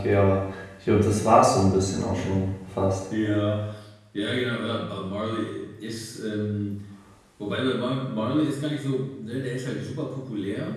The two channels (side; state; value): both; identical; correlation 1.00